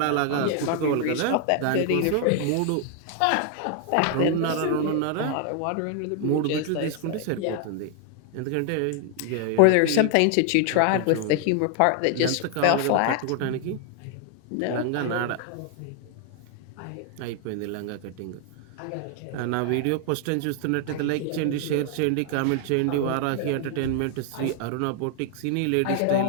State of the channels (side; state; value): both; different; correlation 0.00